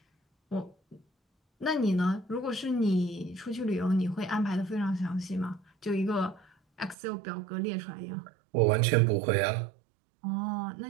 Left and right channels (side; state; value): left; drops out; at 7.0 s